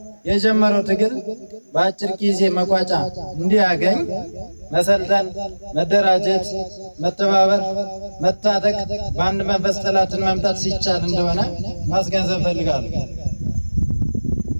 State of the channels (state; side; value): inverted; both; correlation -1.00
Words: የጀመረው ትግል በአጭር ጊዜ መቋጫ እንዲያገኝ መሰልጠን፣ መደራጀት፣ መተባበር፣ መታጠቅ፣ በአንድ መንፈስ ጠላትን መምታት ሲቻል እንደሆነ ማስገንዘብ ፈልጋለሁ።